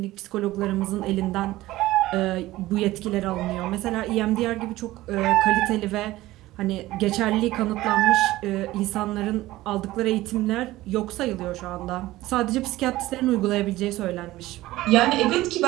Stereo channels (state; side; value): quieter; left; 17.1 dB